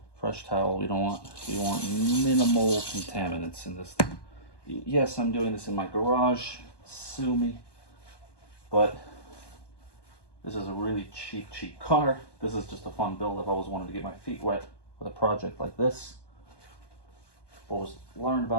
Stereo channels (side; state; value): right; late; 1.2 ms